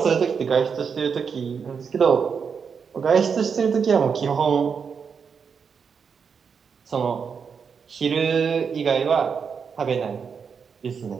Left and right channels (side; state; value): left; quieter; 6.2 dB